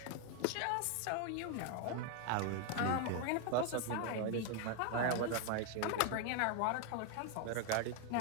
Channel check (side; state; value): both; different; correlation 0.01